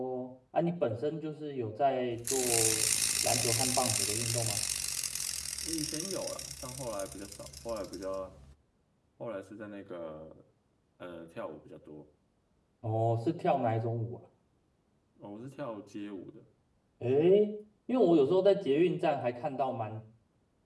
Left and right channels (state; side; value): identical; both; correlation 1.00